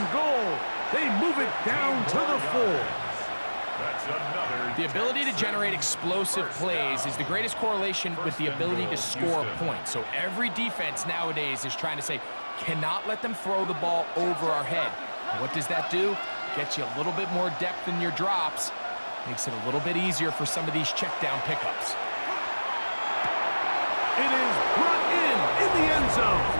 goal. They move it down to the 4. That's another. The ability to generate explosive plays is the greatest correlation with the ability to score points. So every defense nowadays is trying to say, cannot let them throw the ball over our head. And what does that do? Gets you a little bit more depth in your drops. Makes it a little bit easier for some of these check down pickups. It is brought in the end zone.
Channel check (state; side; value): inverted; both; correlation -1.00